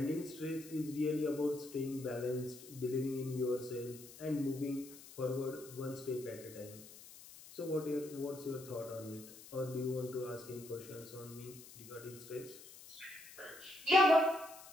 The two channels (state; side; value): noise; left; hiss, 17 dB below the sound